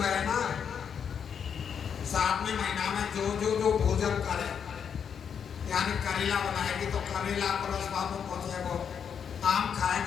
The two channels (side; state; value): right; quieter; 7.4 dB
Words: है ना 7वें महीना में जो भोजन करे, यानी करेला बनाएगी तो करेला को रसवा में पहुंचेगा, आम